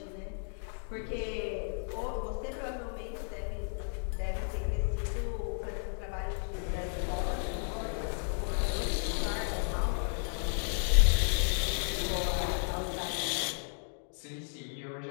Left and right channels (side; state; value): right; silent; 55 dB below the other